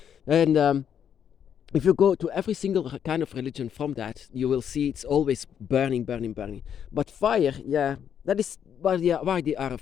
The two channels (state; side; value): quieter; right; 8.6 dB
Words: And if you go to every single kind of religion from that, you will see it's always burning, burning, burning. But fire, yeah, that is why they are